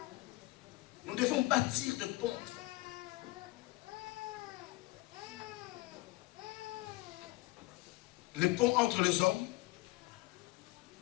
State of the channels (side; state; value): right; quieter; 20.7 dB